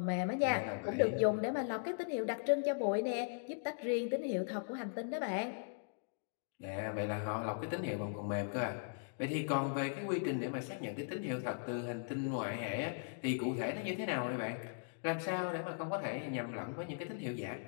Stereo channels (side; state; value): right; silent; digital silence